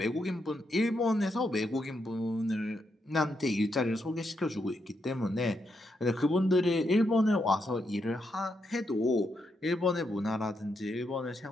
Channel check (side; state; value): both; normal; correlation 0.81